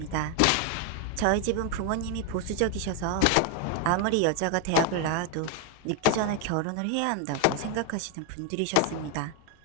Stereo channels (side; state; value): both; different; correlation 0.01